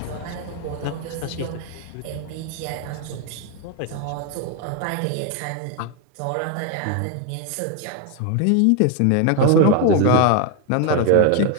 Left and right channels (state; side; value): different; both; correlation 0.01